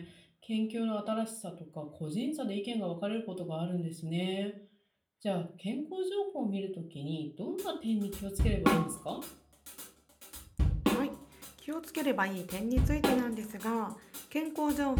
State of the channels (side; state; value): both; identical; correlation 1.00